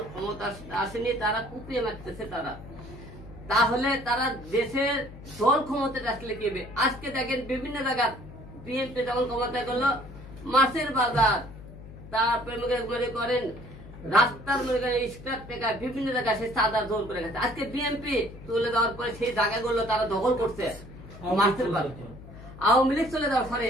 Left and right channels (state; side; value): noise; left; hum, 16 dB below the sound